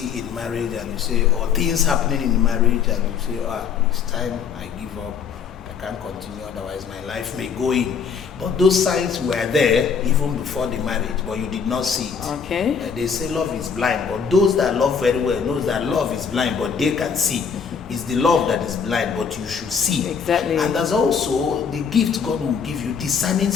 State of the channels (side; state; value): right; quieter; 6.5 dB